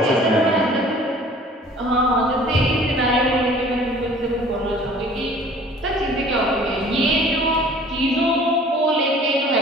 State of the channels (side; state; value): both; normal; correlation 0.50